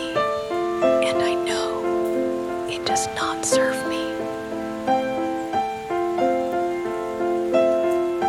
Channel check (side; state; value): both; identical; correlation 1.00